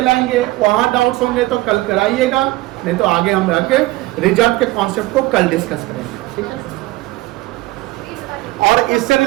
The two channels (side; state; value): left; quieter; 19.1 dB